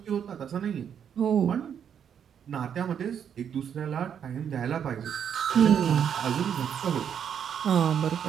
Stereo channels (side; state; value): left; quieter; 8.3 dB